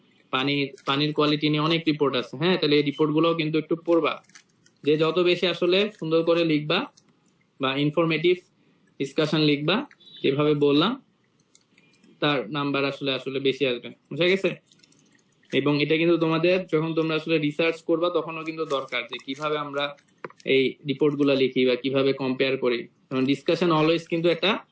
পানির কোয়ালিটি নিয়ে অনেক রিপোর্ট আছে, হ্যাঁ, তাহলে এই রিপোর্ট গুলোও কিন্তু একটু পড়বা। যে যত বেশি আসলে সুন্দর করে লিখবা বা ইনফরমেটিভ ডিসকাশন লিখবা যেভাবে বললাম, তার নাম্বার আসলে বেশি আসবে, বুঝা গেছে? এবং এটা কিন্তু তোমাদের যখন তোমরা আসলে রিসার্চ করবা তখনও কিন্তু দরকার যে কিভাবে আমরা এই রিপোর্ট গুলা লিখি বা কিভাবে কম্পেয়ার করি। কারণ ডিসকাশন অলওয়েজ কিন্তু একটা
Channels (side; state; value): both; identical; correlation 1.00